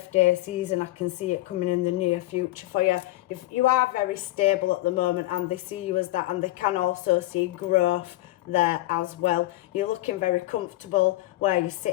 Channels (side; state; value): right; quieter; 17.5 dB